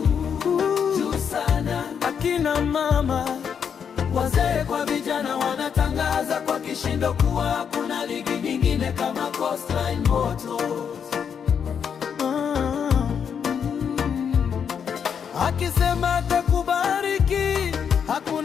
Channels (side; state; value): right; quieter; 7.3 dB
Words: sana. Akina mama, wazee kwa vijana wanatangaza kwa kishindo kuwa hakuna ligi nyingine kama Coastline Motors. Akisema atakubariki,